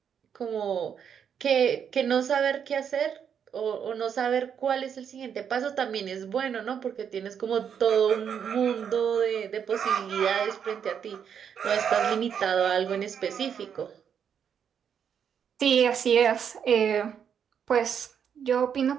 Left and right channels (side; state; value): left; quieter; 7.9 dB